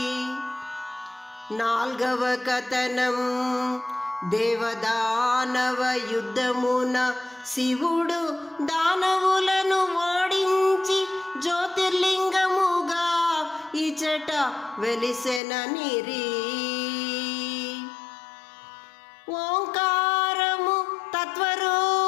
నాల్గవ కథనం దేవదానవ యుద్ధమున శివుడు దానవులను ఓడించి జ్యోతిర్లింగముగా ఇచట వెలిసెననిరి. ఓంకారము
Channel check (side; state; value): right; drops out; at 15.4 s